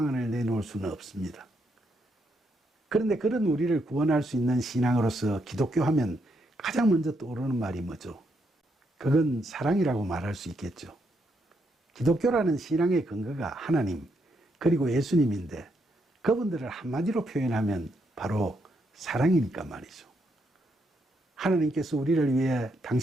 내놓을 수는 없습니다. 그런데 그런 우리를 구원할 수 있는 신앙으로서 기독교 하면 가장 먼저 떠오르는 말이 뭐죠? 그건 사랑이라고 말할 수 있겠죠. 기독교라는 신앙의 근거가 하나님, 그리고 예수님인데 그분들을 한마디로 표현하면 바로 사랑이니까 말이죠. 하나님께서 우리를 위해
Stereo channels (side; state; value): both; normal; correlation 0.78